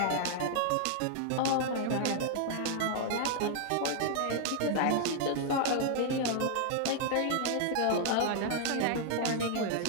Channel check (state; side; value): different; both; correlation 0.00